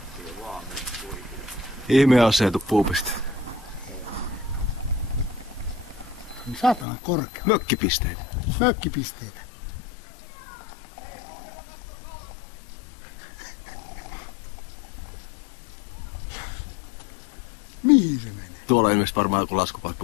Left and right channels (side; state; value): right; drops out; at 6.9 s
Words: Ihme aseetu puupiste. Saatana korkea. Mökkipisteitä. Mökkipisteitä. Mihin se menee? Tuolla on ilmeisesti varmaan joku